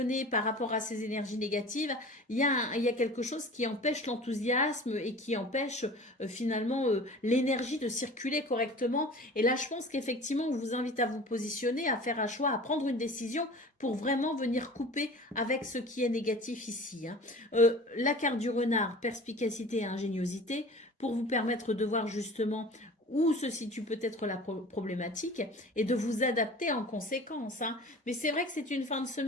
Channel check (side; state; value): both; normal; correlation 0.41